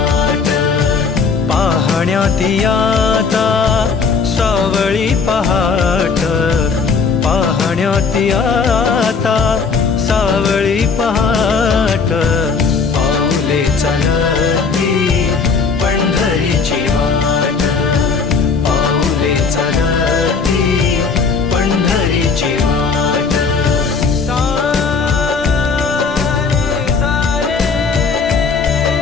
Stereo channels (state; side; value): quieter; right; 5.1 dB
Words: पाहण्यात आता सावळी पहाट, पाहण्यात आता सावळी पहाट, पाऊले चालती पंढरीची वाट, पाऊले चालती पंढरीची वाट.